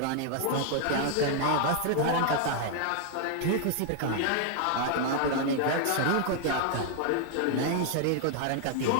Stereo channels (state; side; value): different; both; correlation 0.00